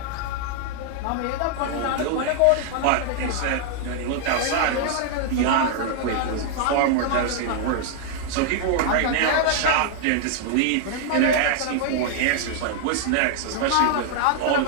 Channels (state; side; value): different; both; correlation 0.00